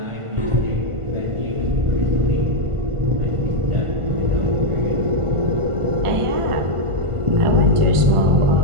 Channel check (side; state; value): left; late; 1.5 ms